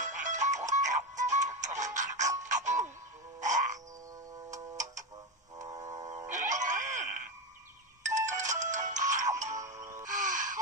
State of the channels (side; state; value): both; normal; correlation 0.15